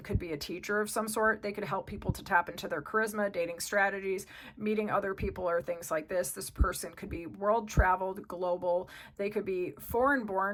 could be a teacher of some sort. They could help people to tap into their charisma, dating strategies, meeting other people, or things like this. This person could be world traveled, global. They could be foreign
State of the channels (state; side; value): identical; both; correlation 1.00